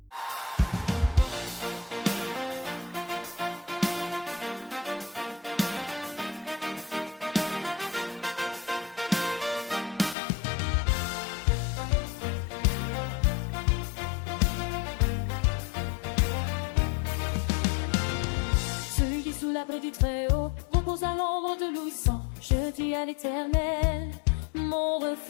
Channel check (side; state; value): right; drops out; at 10.2 s